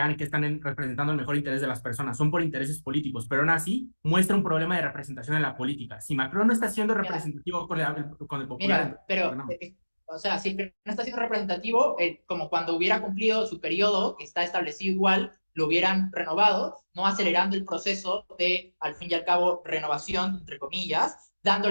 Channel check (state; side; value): inverted; both; correlation -1.00